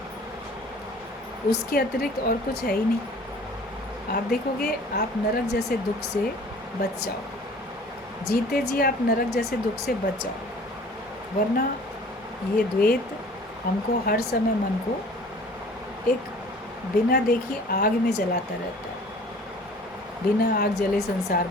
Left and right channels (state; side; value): normal; both; correlation 0.49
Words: उसके अतिरिक्त और कुछ है ही नहीं। आप देखोगे आप नरक जैसे दुख से बच जाओ, जीते जी आप नरक जैसे दुख से बच जाओ। वरना ये द्वैत हमको हर समय मन को एक बिना देखी आग में जलाता रहता है। बिना आग जले संसार